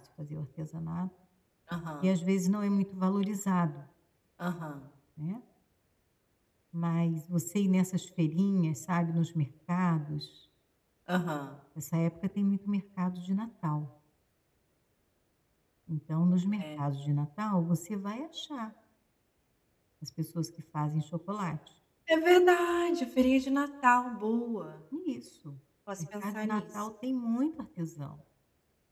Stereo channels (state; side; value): identical; both; correlation 1.00